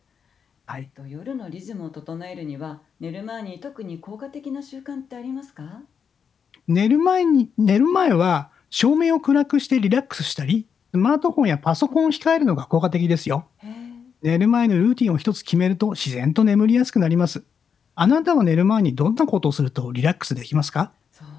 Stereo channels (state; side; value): quieter; right; 6.8 dB